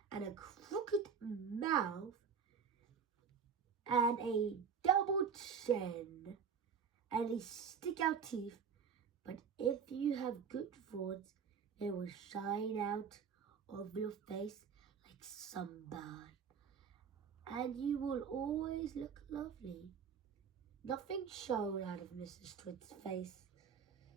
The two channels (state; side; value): quieter; left; 6.6 dB